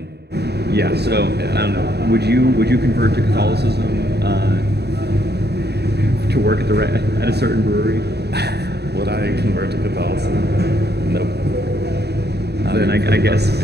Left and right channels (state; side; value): late; left; 0.48 ms